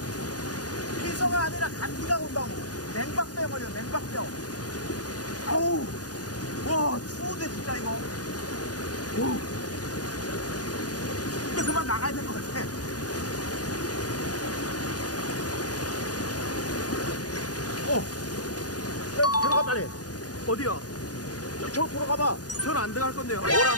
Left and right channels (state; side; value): late; right; 0.68 ms